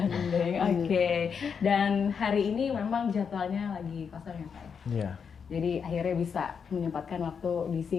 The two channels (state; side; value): quieter; right; 6.5 dB